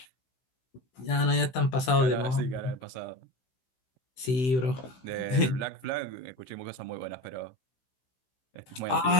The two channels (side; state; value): right; late; 16 ms